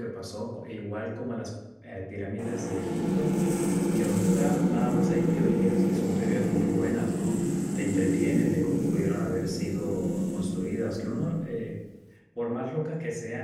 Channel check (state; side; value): identical; both; correlation 1.00